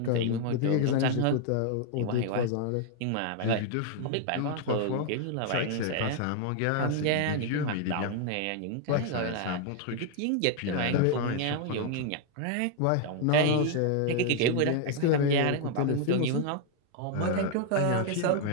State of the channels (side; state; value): both; different; correlation 0.00